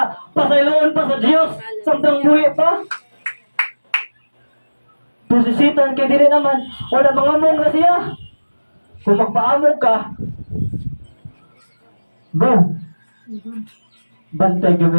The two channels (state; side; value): inverted; both; correlation -1.00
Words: pasayloon pa sa Diyos, samtang buhi pa. Pusisitan kay diri naman, wala mga mong na siya. Kung magpaamog ka, go. Bantay